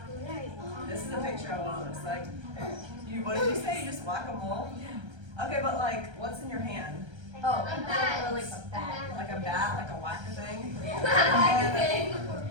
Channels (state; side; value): late; left; 1.3 ms